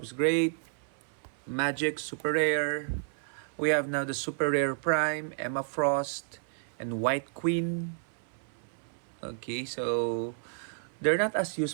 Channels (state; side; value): silent; left; 55 dB below the other